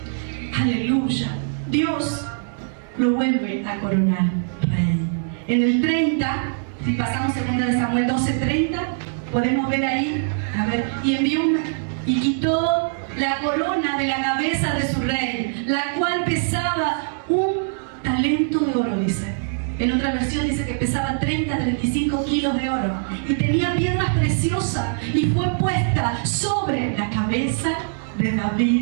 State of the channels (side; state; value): left; silent; digital silence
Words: aleluya, Dios lo vuelve a coronar rey. En el 30, si pasamos 2 Samuel 12:30, podemos ver ahí, a ver, y quitó la corona de la cabeza de su rey, la cual pesaba 1 talento de oro, dice. En otra versión dice que pesaba 35 kilos de oro y tenía piedras preciosas, y fue puesta sobre la cabeza de